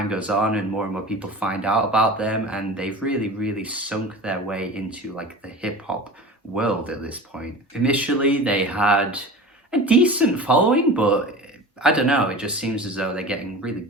goes on and more people find out about them, and they've really sunk their way into like the hip-hop world at this point. Initially they had a decent following, but I don't know, it just seems as though they're getting really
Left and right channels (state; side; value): normal; both; correlation 0.34